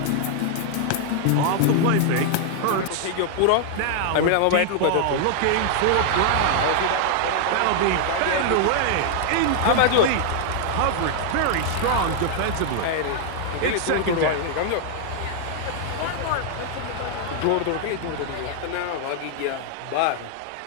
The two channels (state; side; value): different; both; correlation 0.00